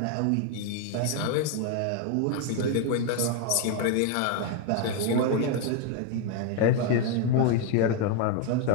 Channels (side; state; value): both; different; correlation 0.01